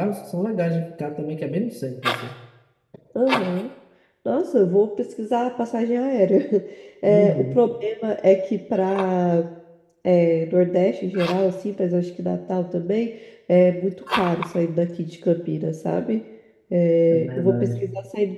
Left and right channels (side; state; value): both; identical; correlation 1.00